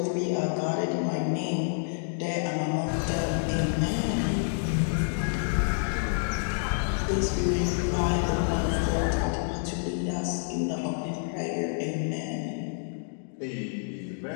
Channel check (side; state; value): right; silent; digital silence